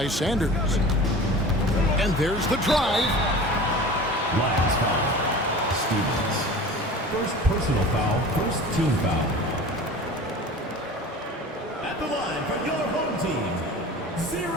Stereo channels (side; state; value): both; normal; correlation 0.38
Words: Sanders. And there's the drive. Last foul, Stevens. First personal foul, first team foul. At the line for your home team,